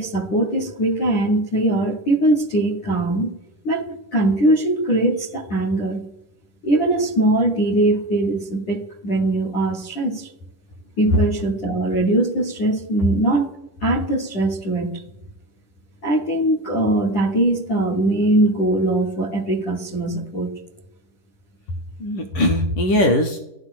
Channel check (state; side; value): late; right; 10 ms